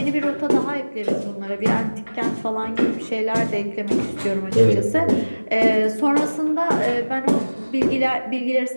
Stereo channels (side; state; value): both; inverted; correlation -1.00